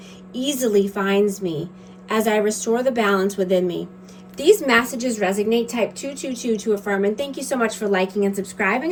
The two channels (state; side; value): identical; both; correlation 1.00